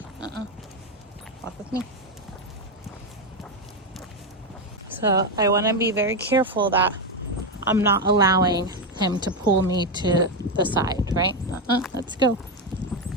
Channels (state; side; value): normal; both; correlation 0.08